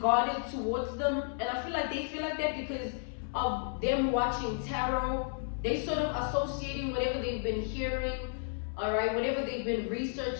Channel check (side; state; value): right; silent; 56 dB below the other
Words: towards them. And I feel like they feel like that because of them watching tarot. They sort of associating whatever they've been hearing, all right, whatever they've been